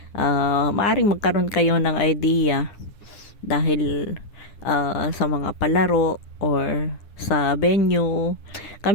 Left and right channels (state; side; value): late; right; 9.8 ms